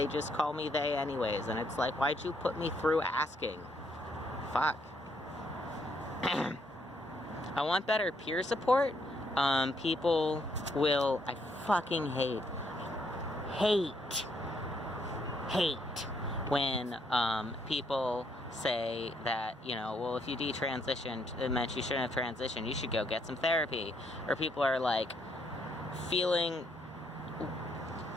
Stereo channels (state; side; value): normal; both; correlation 0.72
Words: just call me they anyways, and it's like, why'd you put me through asking? Fuck. I want better peer support. People will, I fucking hate when people say that, you know, well, if you detransitioned, it meant you shouldn't have transitioned, you should go get some therapy. Or people are like,